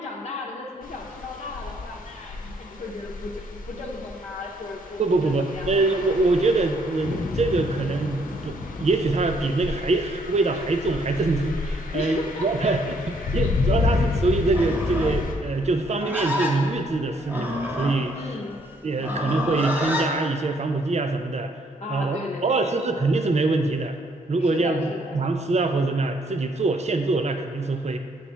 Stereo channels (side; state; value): both; normal; correlation 0.68